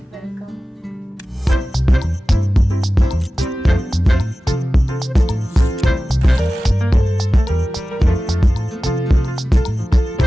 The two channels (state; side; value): normal; both; correlation 0.95